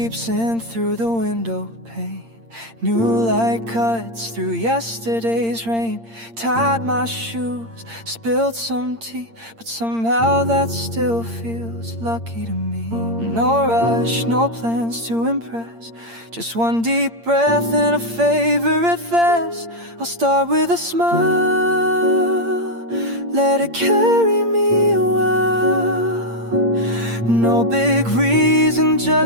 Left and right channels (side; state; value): left; late; 8.7 ms